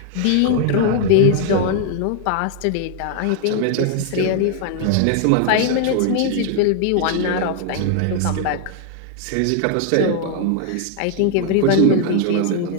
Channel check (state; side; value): different; both; correlation 0.00